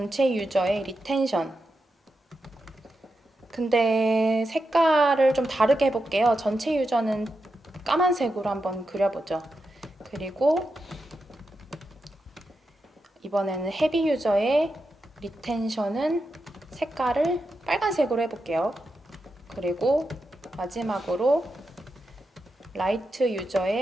유저의 리텐션. 근데 색깔을 좀 다르게 해볼게요. 전체 유저는 까만색으로 한번 그려보죠. 그리고 이번에는 헤비 유저의 리텐션은 색깔을 빨간색으로 해볼게요. 그리고 마지막으로 라이트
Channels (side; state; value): both; normal; correlation 0.88